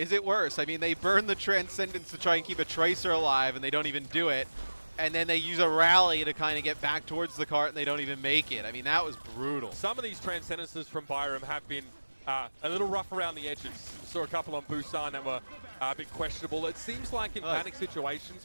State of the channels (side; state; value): both; inverted; correlation -1.00